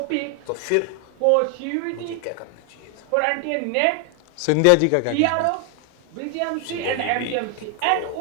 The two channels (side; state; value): both; different; correlation 0.00